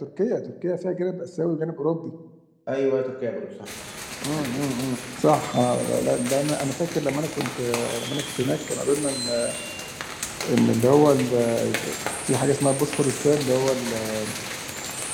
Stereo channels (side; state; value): both; identical; correlation 1.00